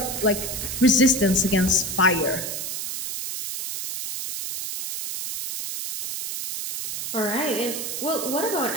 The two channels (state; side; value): noise; right; hiss, 5 dB below the sound